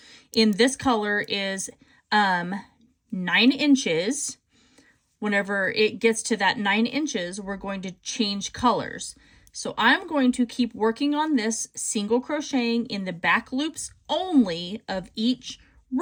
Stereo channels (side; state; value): both; identical; correlation 1.00